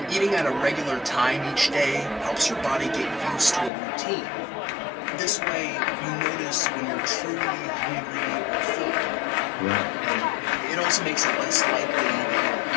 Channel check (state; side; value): drops out; right; at 3.7 s